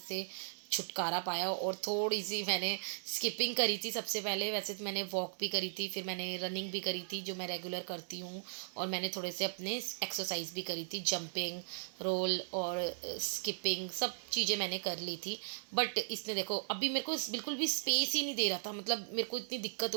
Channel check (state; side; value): silent; left; digital silence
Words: छुटकारा पाया, और थोड़ी सी मैंने स्किपिंग करी थी सबसे पहले। वैसे तो मैंने वॉक भी करी थी, फिर मैंने रनिंग भी करी थी जो मैं रेगुलर करती हूँ, और मैंने थोड़े से अपने एक्सरसाइज भी करी थी, जंपिंग, रोल और स्किपिंग, सब चीज़ें मैंने कर ली थी। बट इसने देखो अभी मेरे को बिल्कुल भी स्पेस ही नहीं दे रहा था, मतलब मेरे को इतनी दिक्कत